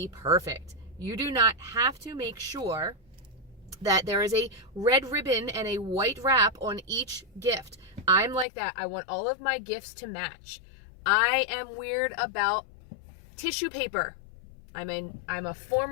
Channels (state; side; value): drops out; right; at 8.5 s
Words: perfect. You do not have to make sure that there is a red ribbon and a white wrap on each gift. I'm like that. I want all of my gifts to match. I am weird about tissue paper. I'm a